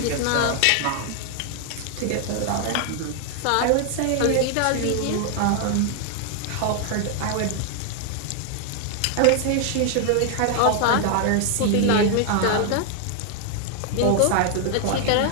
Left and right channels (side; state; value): both; different; correlation 0.00